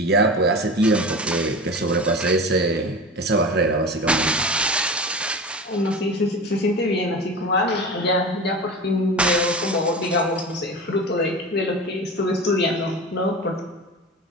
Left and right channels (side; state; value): both; normal; correlation 0.30